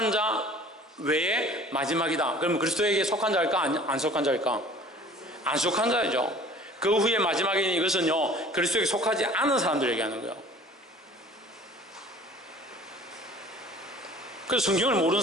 자 외에 마지막이다. 그러면 그리스도에게 속한 자일까? 안 속한 자일까? 안 속한 자이죠. 그 후에 마지막이니 이것은요, 그리스도에게 속하지 않은 사람들 얘기하는 거예요. 그래서 성경을 모르는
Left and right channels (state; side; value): normal; both; correlation 0.48